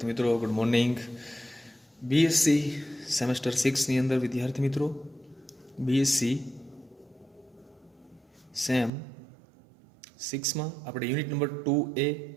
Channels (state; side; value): drops out; left; at 8.9 s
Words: મિત્રો, ગુડ મોર્નિંગ. બીએસસી સેમેસ્ટર 6ની અંદર વિદ્યાર્થી મિત્રો બીએસસી સેમ 6માં આપણે યુનિટ નંબર 2A